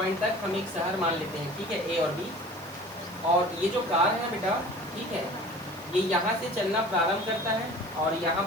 तक हम एक शहर मान लेते हैं, ठीक है, ए और बी, और ये जो कार है बेटा, ठीक है, ये यहाँ से चलना प्रारंभ करता है और यहाँ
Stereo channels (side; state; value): right; noise; hiss, 20 dB below the sound